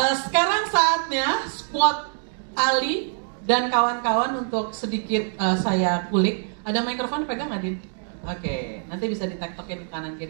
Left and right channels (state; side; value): silent; left; digital silence